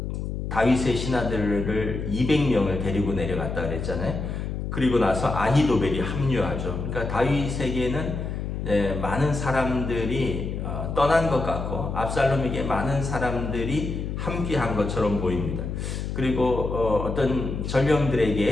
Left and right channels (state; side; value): noise; left; hum, 4 dB below the sound